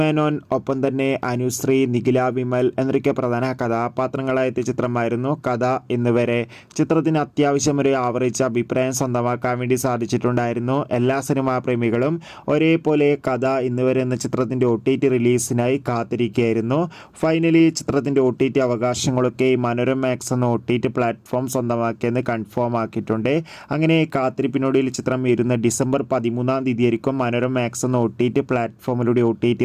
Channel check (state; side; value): identical; both; correlation 1.00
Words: ഒപ്പം തന്നെ അനുശ്രീ, നിഖില വിമൽ എന്നൊക്കെ പ്രധാന കഥാപാത്രങ്ങളായ ചിത്രമായിരുന്നു കഥ ഇന്നുവരെ. ചിത്രത്തിന് അത്യാവശ്യം ഒരു ആവറേജ് അഭിപ്രായം സ്വന്തമാക്കാൻ വേണ്ടി സാധിച്ചിട്ടുണ്ടായിരുന്നു. എല്ലാ സിനിമാ പ്രേമികളും ഒരേപോലെ കഥ ഇന്നുവരെ എന്ന ചിത്രത്തിൻ്റെ OTT റിലീസിനായി കാത്തിരിക്കുകയായിരുന്നു. ഫൈനലി ചിത്രത്തിൻ്റെ OTT അവകാശങ്ങളൊക്കെ മനോരമ മാക്സ് എന്ന OTT പ്ലാറ്റ്ഫോം സ്വന്തമാക്കിയെന്ന് കൺഫേം ആക്കിയിട്ടുണ്ട്. അങ്ങനെ കാത്തിരിപ്പിനൊടുവിൽ ചിത്രം വരുന്ന ഡിസംബർ 13 തീയതിയായിരിക്കും മനോരമ മാക്സ് എന്ന OTT പ്ലാറ്റ്ഫോമിലൂടെ OTT